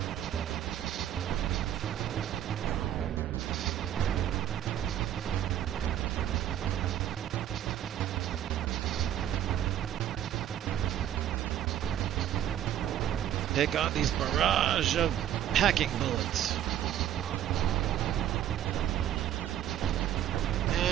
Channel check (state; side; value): quieter; left; 11.2 dB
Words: Take on these barrage of hacking bullets.